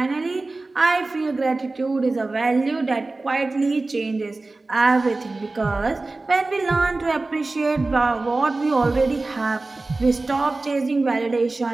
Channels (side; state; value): left; quieter; 3.3 dB